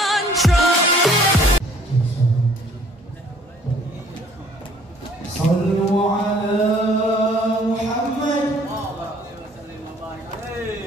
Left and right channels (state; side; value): normal; both; correlation 0.58